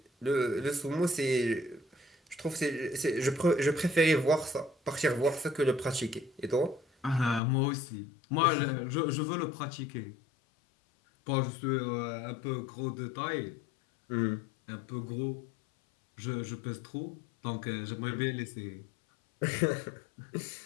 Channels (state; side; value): drops out; right; at 7.4 s